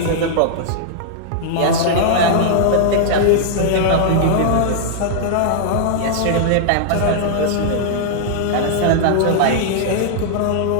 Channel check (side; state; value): both; different; correlation -0.01